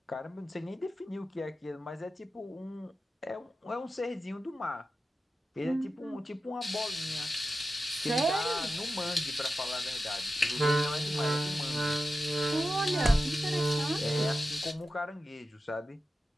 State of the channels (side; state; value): both; normal; correlation 0.92